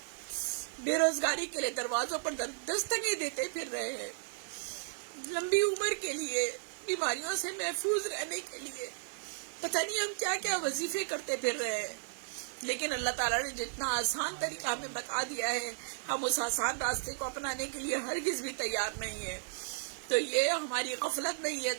بے روزگاری کے لیے دروازوں پر دستکیں دیتے پھر رہے ہیں، لمبی عمر کے لیے، بیماریوں سے محفوظ رہنے کے لیے پتہ نہیں ہم کیا کیا وظیفے کرتے پھر رہے ہیں۔ لیکن اللہ تعالیٰ نے جتنا آسان طریقہ ہمیں بتا دیا ہے، ہم اس آسان راستے کو اپنانے کے لیے ہرگز بھی تیار نہیں ہے۔ تو یہ ہماری غفلت نہیں ہے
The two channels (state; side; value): silent; left; digital silence